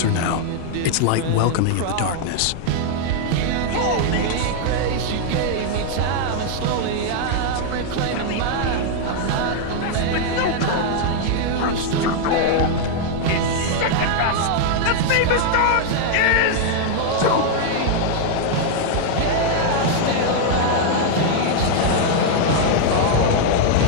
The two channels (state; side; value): different; both; correlation 0.00